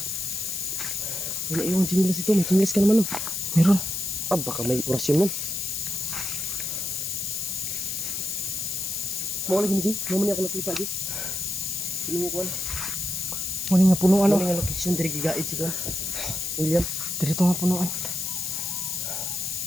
Wala yung chinilas ito. May chinilas ka naman. Meron. Ah, baka may orasyon nun. Mau lagi ni Ji, mau ni ako nakita Ji. Piling ko Muni nga punuan. Muni nga location diri gigaid si Kuan. William, diri to nga punuan.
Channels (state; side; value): noise; left; hiss, 2 dB below the sound